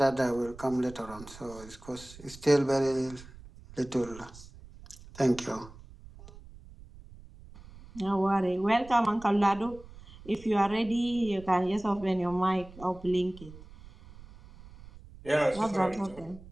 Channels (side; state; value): right; noise; rumble, 19 dB below the sound